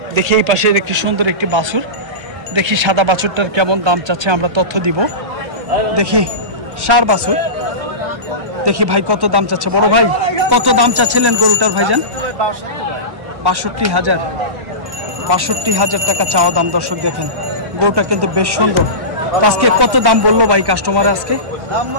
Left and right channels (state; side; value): late; left; 1.1 ms